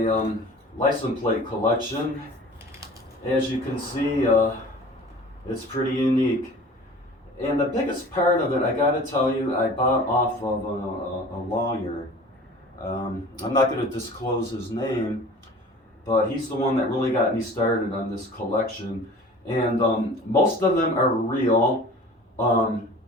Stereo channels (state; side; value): normal; both; correlation 0.43